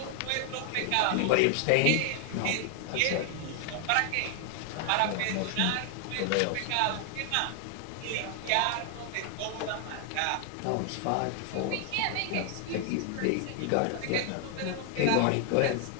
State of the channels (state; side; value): different; both; correlation 0.00